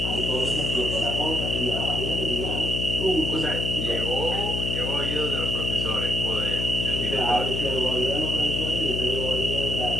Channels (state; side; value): noise; left; hum, 2 dB below the sound